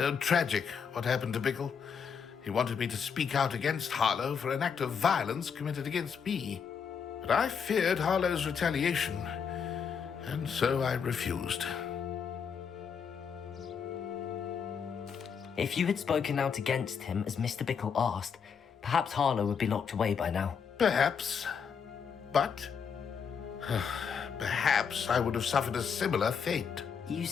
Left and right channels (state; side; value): quieter; right; 6.6 dB